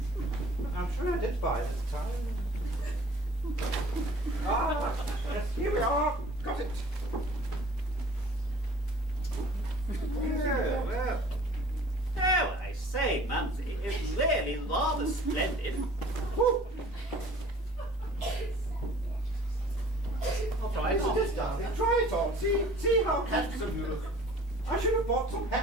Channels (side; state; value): both; normal; correlation 0.49